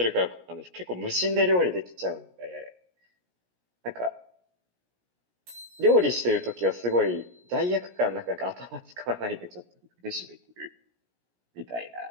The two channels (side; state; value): left; late; 17 ms